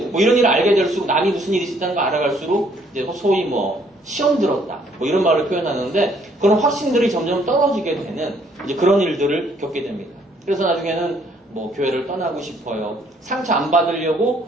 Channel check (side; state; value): both; normal; correlation 0.65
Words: 뭐 이런 일을 알게 될수록 남이 무슨 일이 있었다는 걸 알아갈수록 이제 소위 뭐 시험 들었다 뭐 이런 말을 표현하는데 그런 확신들이 점점 떨어지게 되는 이제 그런 일들을 겪게 됩니다. 그래서 나중에는 뭐 교회를 떠나고 싶어요. 상처 안 받으려고